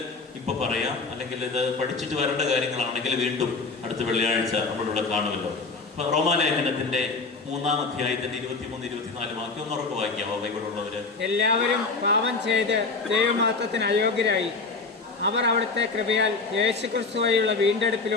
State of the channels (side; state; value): right; quieter; 4.1 dB